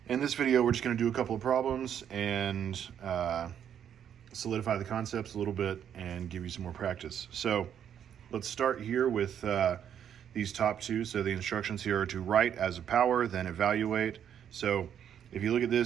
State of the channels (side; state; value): left; quieter; 9.1 dB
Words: in this video we're just going to do a couple of problems and solidify the concepts a little bit and give you some more practice. So let's start here with these top two. So the instructions here are to write as a power, then evaluate. So if you look at